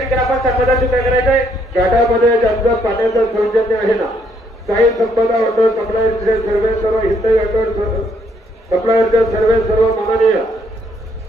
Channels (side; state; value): both; normal; correlation 0.70